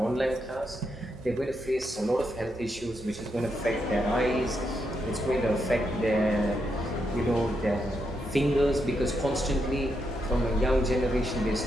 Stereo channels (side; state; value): both; normal; correlation 0.82